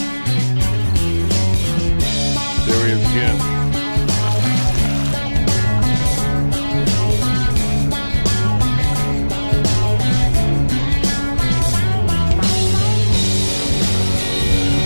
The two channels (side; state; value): both; inverted; correlation -1.00